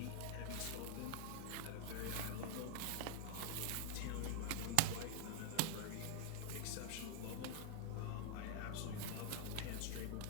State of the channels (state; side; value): different; both; correlation 0.01